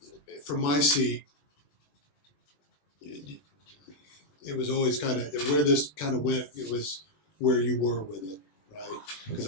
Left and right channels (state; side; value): late; right; 20 ms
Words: from my seat, it was always kind of where this kind of went. It was where you were with it, right? Because